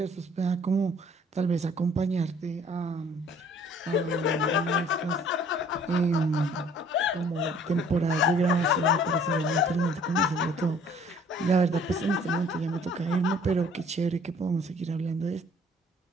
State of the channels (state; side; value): normal; both; correlation 0.56